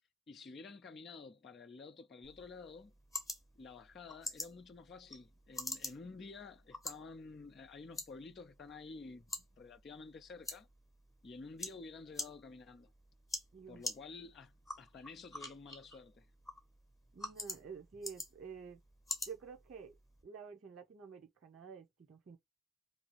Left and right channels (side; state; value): both; normal; correlation 0.64